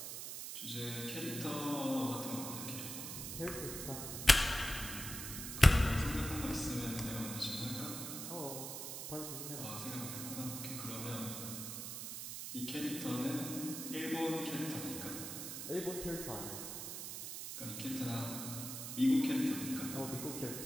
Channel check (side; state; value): right; noise; hiss, 6 dB below the sound